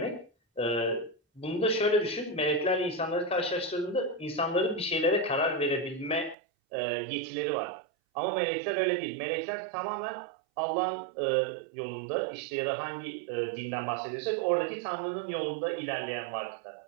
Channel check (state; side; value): drops out; left; at 6.4 s